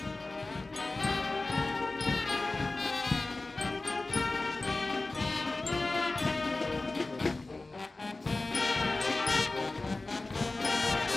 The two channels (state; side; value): quieter; right; 3.2 dB